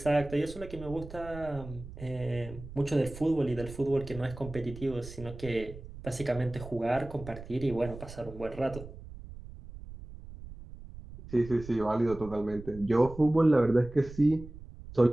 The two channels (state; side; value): noise; right; rumble, 14 dB below the sound